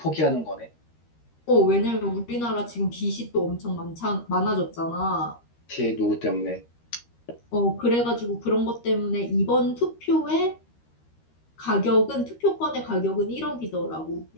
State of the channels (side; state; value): right; late; 13 ms